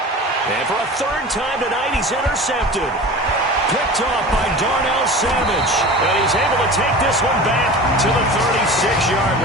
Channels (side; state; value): both; normal; correlation 0.36